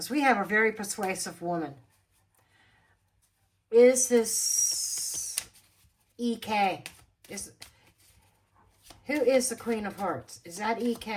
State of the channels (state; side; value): identical; both; correlation 1.00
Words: we have a very persuasive woman. Is this EK? Who is the Queen of Hearts? Is that